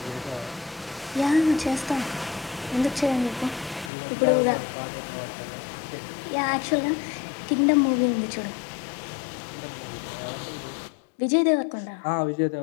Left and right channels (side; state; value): right; drops out; at 3.9 s